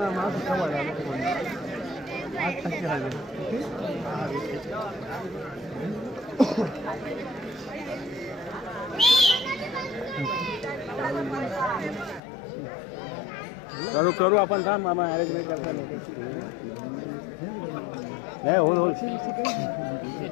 करू आपण थांब मामा अरेंजमेंट करता नाही होल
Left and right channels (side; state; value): right; drops out; at 12.2 s